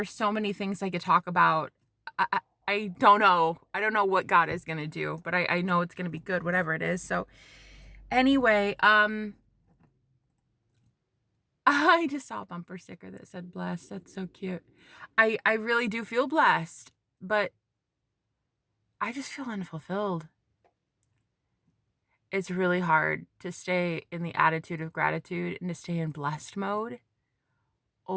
so many things I could talk about. I don't know. I don't know what God is gonna do, but I know it's gonna be good, whatever it is. So anyway, I just saw a bumper sticker that said blessed. That's so cute. I really do feel blessed, but I just feel unfulfilled. It's really hard to stay in the attitude of gratitude and to stay in blessed mode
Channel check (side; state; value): both; identical; correlation 1.00